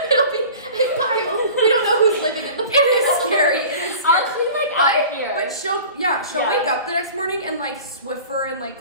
be a pile. We don't know who's living in the pile. It is scary. It is scary. I'll clean like out here. But she'll Yeah. wake up the next morning and like Swiffer and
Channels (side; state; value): both; inverted; correlation -0.41